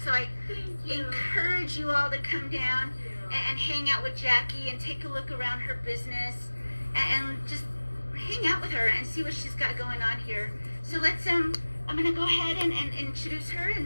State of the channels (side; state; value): both; inverted; correlation -1.00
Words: So I encourage you all to come down and hang out with Jackie and take a look around her business and just hang out with her and see what she's got going on here. So let's I'm gonna go ahead and introduce her,